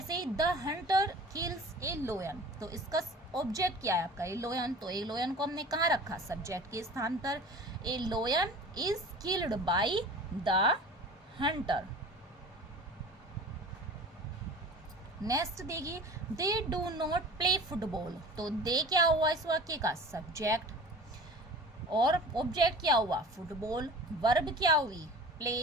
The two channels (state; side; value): normal; both; correlation 0.40